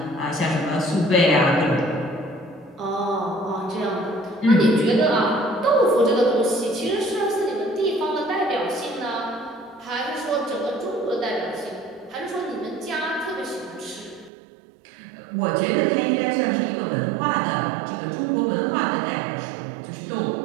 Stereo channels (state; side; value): drops out; left; at 14.3 s